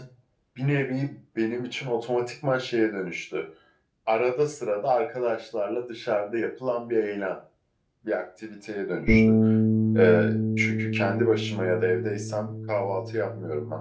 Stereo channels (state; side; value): identical; both; correlation 1.00